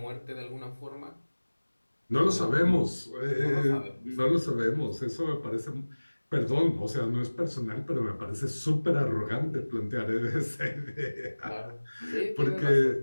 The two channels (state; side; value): inverted; both; correlation -1.00